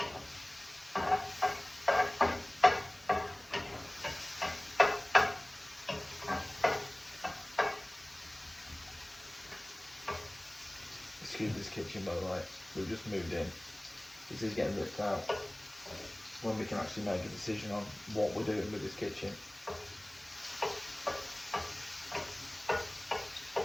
Excuse this kitchen, by the way, we've just moved in. This is getting ripped out. When we can actually make a decision on what we're doing with this kitchen.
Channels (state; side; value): noise; right; hiss, 25 dB below the sound